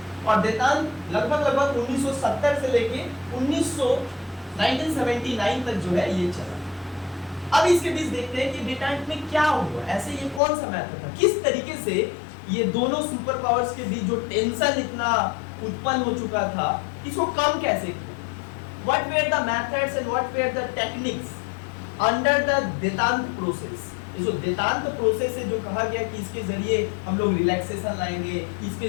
और देतांत लगभग 1970 से लेके 1979 तक जो है ये चला। अब इसके बीच देखते हैं कि देतांत में क्या हुआ, ऐसे ये कौन सा मैटर था, किस तरीके से ये दोनों सुपर पावर्स के बीच जो टेंशन इतना उत्पन्न हो चुका था, इसको कम कैसे किया। What were the methods and what were the techniques under the detente process. जो देतांत प्रोसेस है, जो कहा गया कि इसके जरिए हम लोग रिलैक्सेशन लाएंगे, इसके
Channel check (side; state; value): right; drops out; at 10.4 s